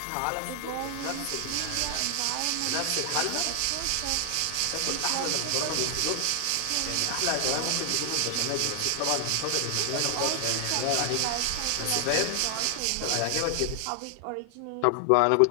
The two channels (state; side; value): different; both; correlation 0.00